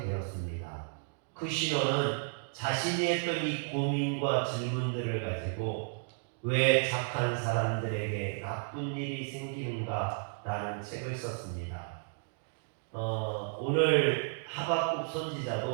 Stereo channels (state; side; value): silent; left; 56 dB below the other